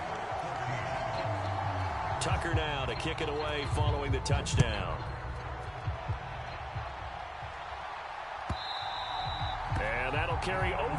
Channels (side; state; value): both; identical; correlation 1.00